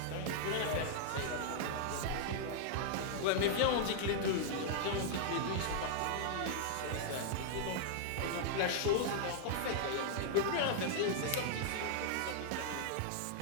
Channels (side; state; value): both; different; correlation -0.01